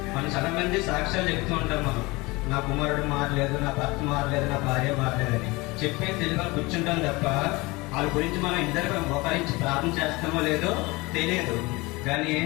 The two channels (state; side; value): quieter; right; 23.5 dB